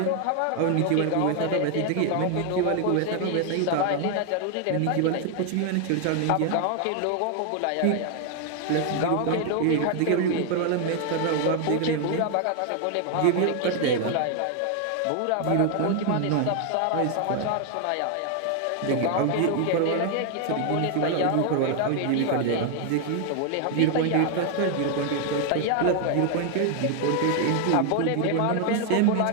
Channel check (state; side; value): different; both; correlation 0.00